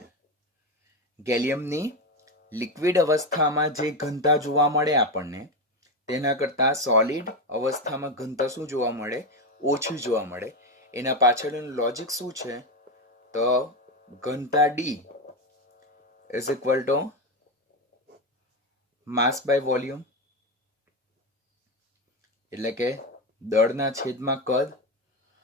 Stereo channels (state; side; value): normal; both; correlation 0.13